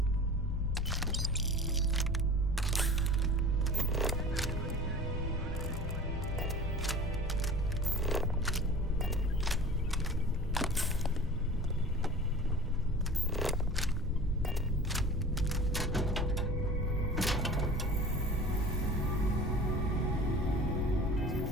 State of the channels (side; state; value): both; normal; correlation 0.40